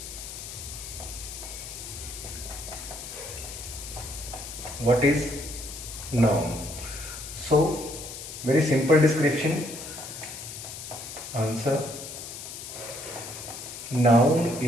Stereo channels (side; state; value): left; noise; hiss, 10 dB below the sound